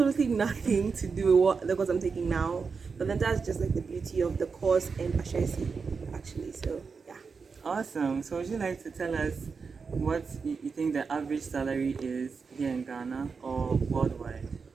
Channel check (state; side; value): quieter; left; 5.2 dB